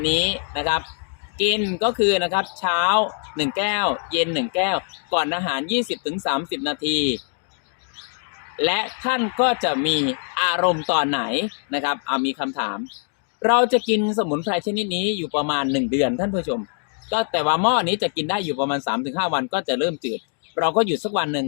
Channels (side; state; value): right; silent; 58 dB below the other